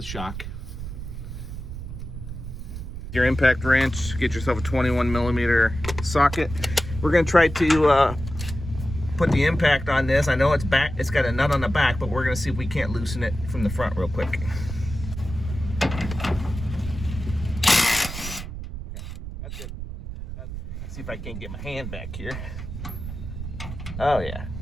shock. Your impact wrench, get yourself a 21mm socket. We're gonna try to put the impact on this. I know it's got a nut on the back, but we're gonna see if we can't loosen it from the front real quick. Okay, that's good. Let's see if I can get my hand back here. Oh yeah.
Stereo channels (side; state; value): right; noise; rumble, 8 dB below the sound